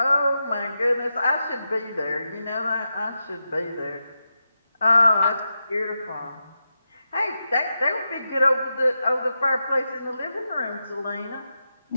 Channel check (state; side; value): inverted; both; correlation -0.88